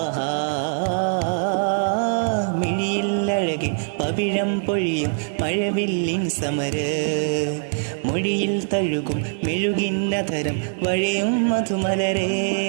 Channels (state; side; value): silent; left; 58 dB below the other